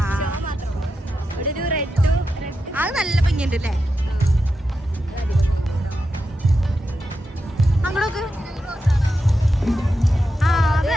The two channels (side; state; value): both; normal; correlation 0.88